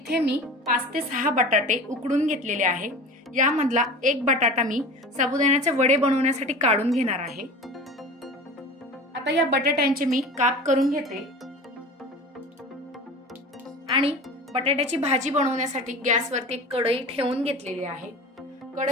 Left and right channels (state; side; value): normal; both; correlation 0.36